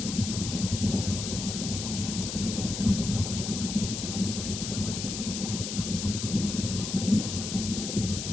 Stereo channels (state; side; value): noise; left; hiss, 5 dB below the sound